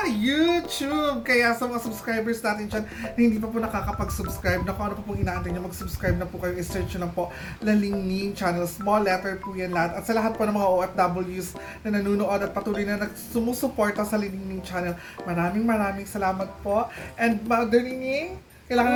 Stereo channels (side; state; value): both; identical; correlation 1.00